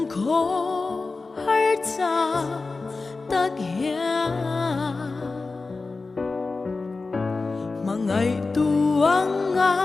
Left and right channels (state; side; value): quieter; right; 3.8 dB